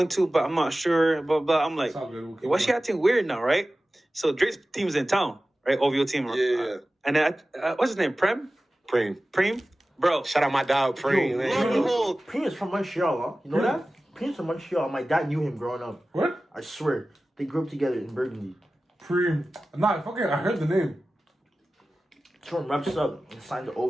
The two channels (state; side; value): normal; both; correlation 0.96